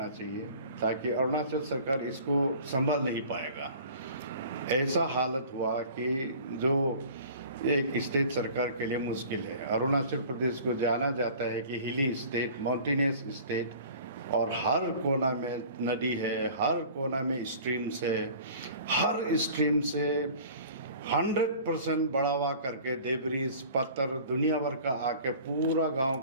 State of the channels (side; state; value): both; inverted; correlation -0.45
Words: चाहिए ताकि अरुणाचल सरकार इसको संभाल नहीं पाएगा। ऐसा हालत हुआ कि जो एक स्टेट सरकार के लिए मुश्किल है। अरुणाचल प्रदेश को जाना जाता है कि हिली स्टेट, माउंटेनियस स्टेट और हर कोना में नदी है, हर कोना में स्ट्रीम्स है, हर स्ट्रीम से 100% बढ़ावा करके डेब्रिस, पत्थर दुनिया भर का आके पूरा गांव